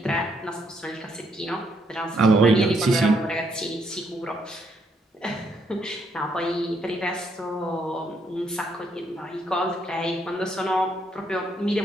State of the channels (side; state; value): both; normal; correlation 0.73